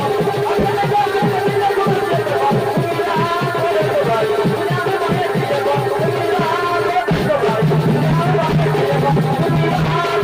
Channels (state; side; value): identical; both; correlation 1.00